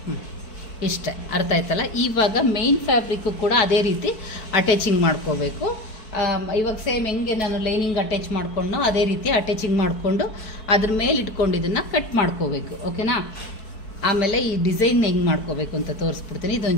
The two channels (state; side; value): late; right; 4.6 ms